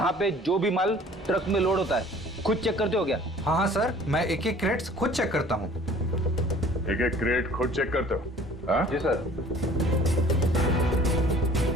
पे जो भी माल ट्रक में लोड होता है खुद चेक करते हो क्या? हाँ हाँ सर, मैं एक एक क्रेट्स खुद चेक करता हूँ। एक एक क्रेट खुद चेक करते हो? हाँ? जी सर।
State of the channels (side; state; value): both; normal; correlation 0.51